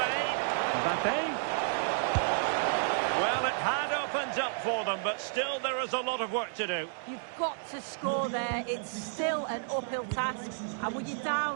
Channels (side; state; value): left; silent; digital silence